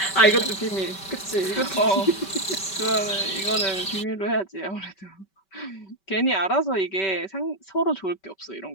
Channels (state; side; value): late; right; 5.2 ms